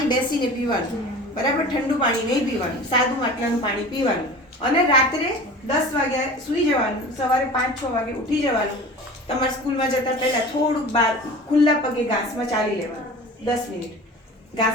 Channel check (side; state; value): both; normal; correlation 0.38